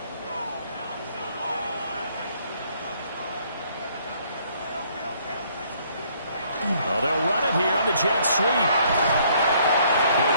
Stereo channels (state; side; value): inverted; both; correlation -0.64